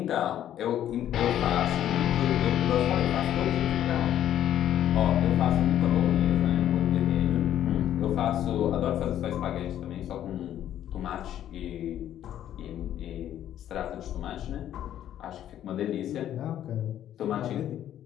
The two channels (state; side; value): quieter; right; 11.3 dB